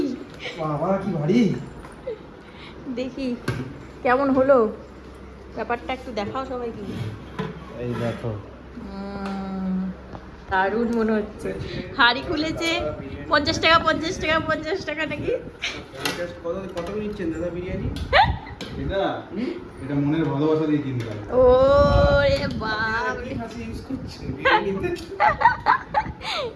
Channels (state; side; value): identical; both; correlation 1.00